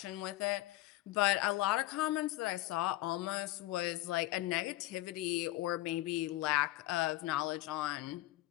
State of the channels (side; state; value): right; quieter; 17.4 dB